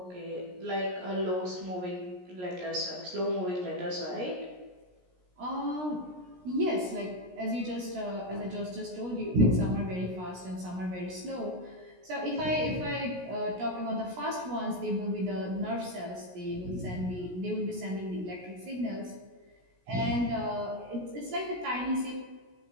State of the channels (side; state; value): left; late; 17 ms